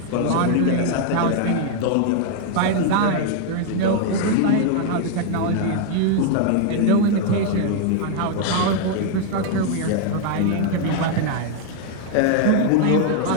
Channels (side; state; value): both; different; correlation 0.00